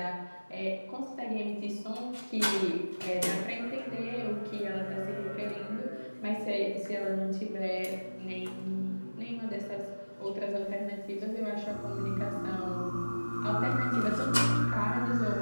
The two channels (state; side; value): inverted; both; correlation -1.00